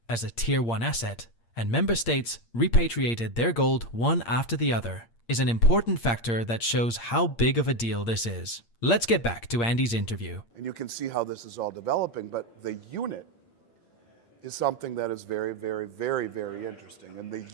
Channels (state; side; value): late; right; 8.6 ms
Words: as a Tier 1 asset, and member states repatriated their gold one after the other, is an important factor that shows how big of a deal this is. Let's get back to Andy's interview. And you can see how this is all developing, but the unit is something that is very, very, very, very interesting. And the